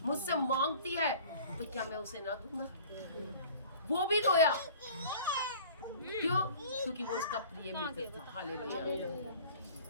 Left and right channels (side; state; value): both; inverted; correlation -0.46